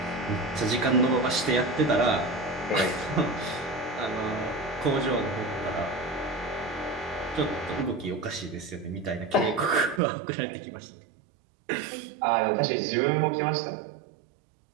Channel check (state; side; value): drops out; left; at 10.0 s